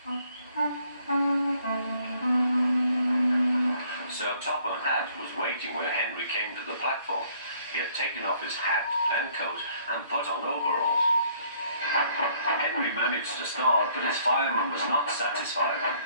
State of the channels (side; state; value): both; inverted; correlation -0.63